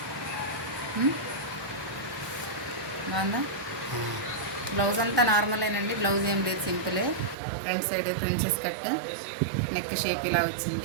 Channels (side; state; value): left; drops out; at 7.4 s